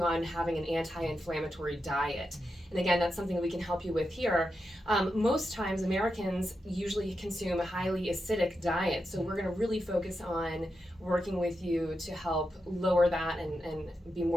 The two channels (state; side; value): normal; both; correlation 0.87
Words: on having an anti-inflammatory diet. And again, that's something we can help you with here. Most times, Americans usually consume a highly acidic diet, so we're going to really focus on working with you to help lower that and be